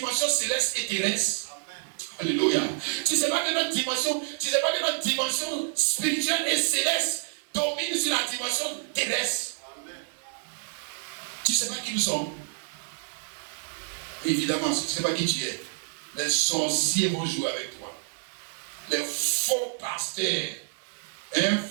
céleste et terrestre. Alléluia. Tu ne sais pas que notre dimension spirituelle et céleste domine sur la dimension terrestre. Tu ne sais pas qui nous sommes. Mais évidemment, si tu ne sais pas qui tu es, les sorciers vont jouer avec toi. Les faux pasteurs,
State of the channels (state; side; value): silent; left; digital silence